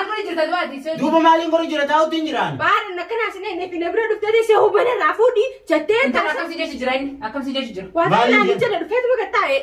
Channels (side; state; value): both; identical; correlation 1.00